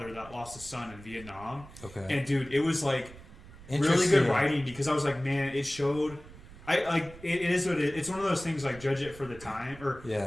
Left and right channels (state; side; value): noise; right; rumble, 18 dB below the sound